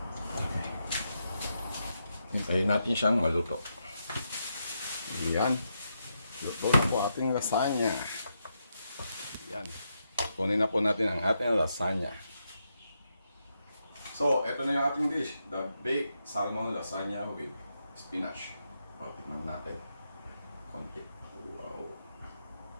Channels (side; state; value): both; inverted; correlation -0.83